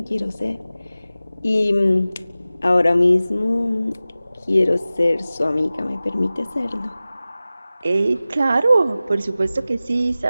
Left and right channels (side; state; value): both; inverted; correlation -0.96